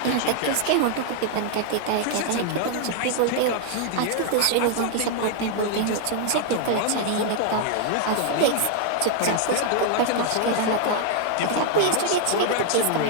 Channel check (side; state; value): both; different; correlation 0.00